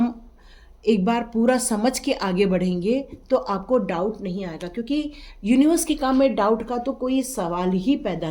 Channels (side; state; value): both; identical; correlation 1.00